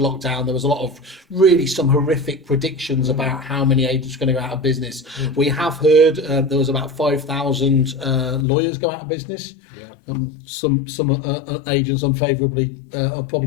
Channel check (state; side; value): drops out; right; at 8.5 s